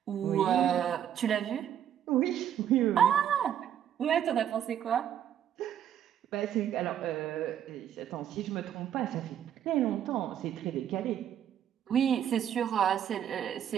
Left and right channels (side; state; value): left; quieter; 10.0 dB